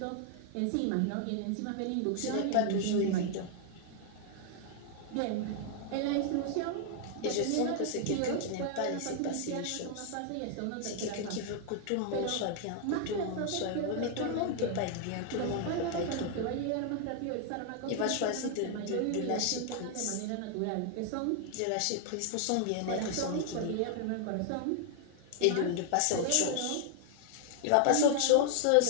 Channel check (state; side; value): different; both; correlation 0.00